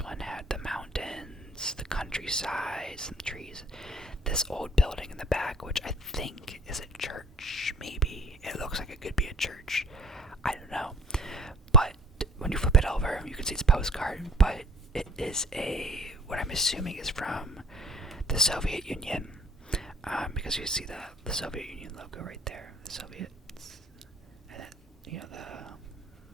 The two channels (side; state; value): both; normal; correlation 0.51